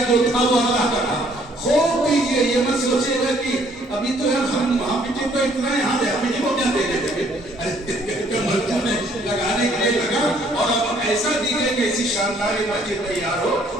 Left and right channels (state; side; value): normal; both; correlation 0.63